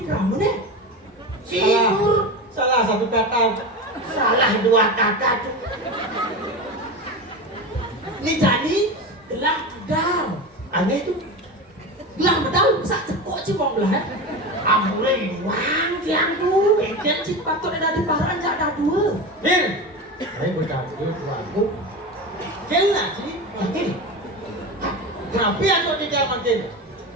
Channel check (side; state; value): both; normal; correlation 0.24